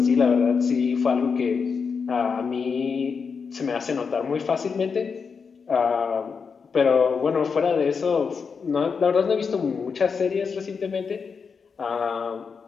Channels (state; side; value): quieter; right; 5.6 dB